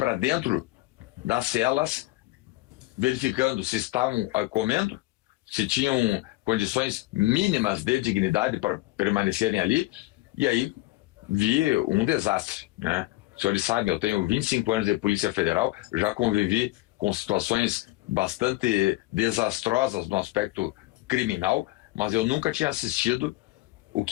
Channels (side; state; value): right; quieter; 19.4 dB